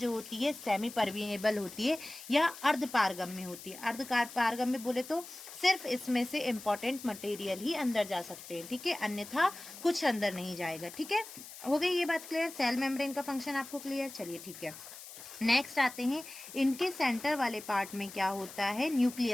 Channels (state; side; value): noise; left; hiss, 14 dB below the sound